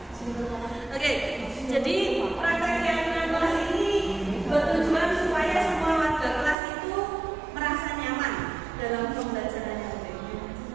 Jadi praktek keyakinan kelas ini bertujuan supaya semua warga kelas itu merasa nyaman dalam pembelajarannya.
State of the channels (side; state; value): left; drops out; at 6.6 s